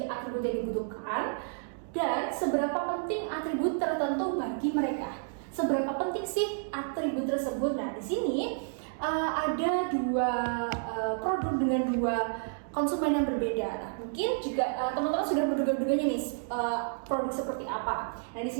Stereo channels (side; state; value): left; silent; digital silence